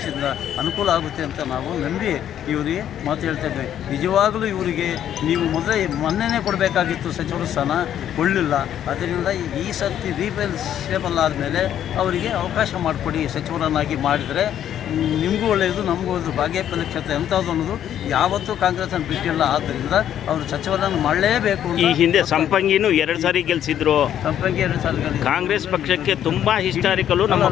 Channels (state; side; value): quieter; right; 10.4 dB